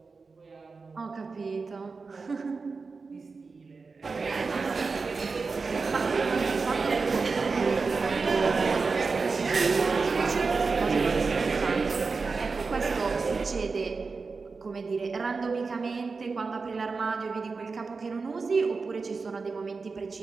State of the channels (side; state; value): left; quieter; 4.5 dB